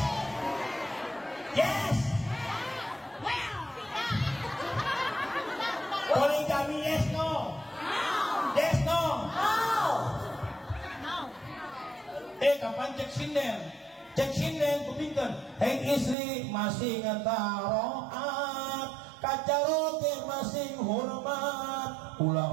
yes. Poligami yes no? Yes no? Kapan cek sinden? Cek sinden kupingkan. Hei istri masih ngetaroat, kacaroke masih hormat,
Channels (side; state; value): left; drops out; at 16.2 s